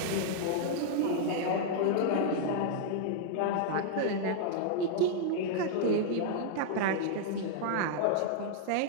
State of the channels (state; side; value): different; both; correlation -0.01